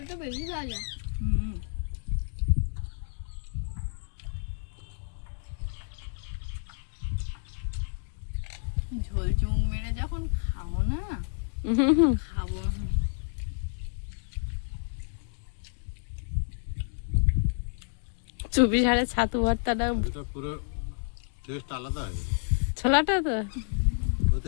বেশি খাওয়া যায়। হুম, ঝোল চুং মেরে যখন খাও না, খাবো। চুপি ঝাড়ে ছাতু ভর্তাটা, এটা পুরো টেস্ট আলাদা হয়ে যাবে। ছোলাটা তো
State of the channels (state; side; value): silent; right; digital silence